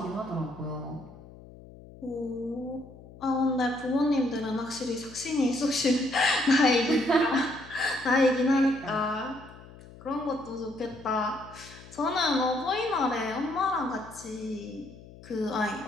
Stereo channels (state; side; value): noise; left; hum, 19 dB below the sound